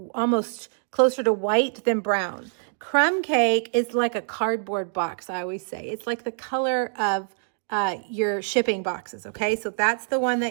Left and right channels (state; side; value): silent; left; digital silence